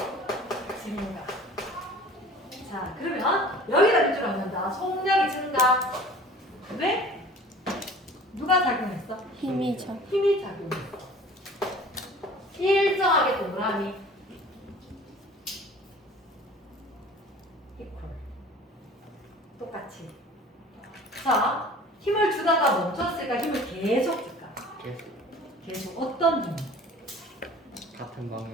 증가. 자, 그러면 여기다 밑줄 긋는다. 속력이 증가. 왜? 누가 작용했어? 힘이 작용했어. 일정하게 동그라미. equal. 똑같이. 자, 힘을 주다가 멈췄을까? 힘을 계속 줄까? 계속. 어떤 힘? 같은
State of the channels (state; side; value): normal; both; correlation 0.45